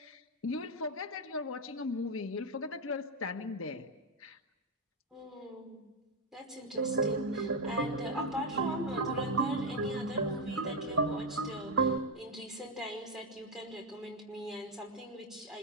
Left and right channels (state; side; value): normal; both; correlation 0.05